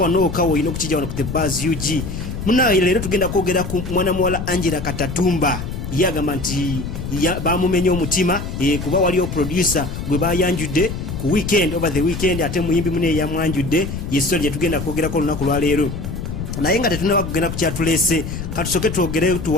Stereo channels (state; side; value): noise; left; rumble, 6 dB below the sound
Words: okawo olina okukijja wano ku the buzz UG. Munaye leero tugenda kwogera ku mwana muwala Angella Katatumba. Yagamba nti bamumenya omutima kuba waliyo producer gwe bayanjudde ku weekend over the weekend ate muyimbi mune yamwanjudde yeso lye tugenda kwogerako olunaku lwa leero. Naye nga tetunaba kugenda ku kyatulese katusoke twogere